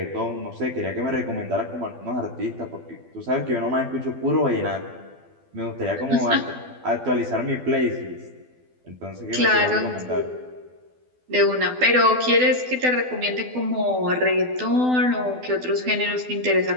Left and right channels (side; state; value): left; late; 12 ms